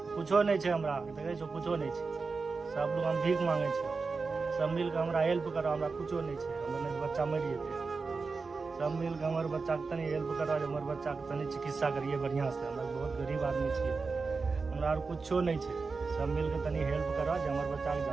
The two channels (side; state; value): left; quieter; 4.4 dB